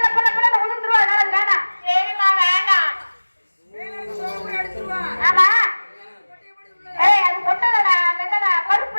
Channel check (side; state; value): both; inverted; correlation -1.00